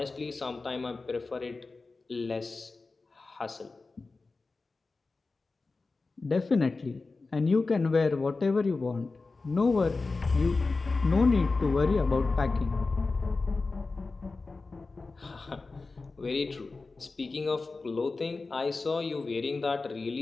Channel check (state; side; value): quieter; right; 3.8 dB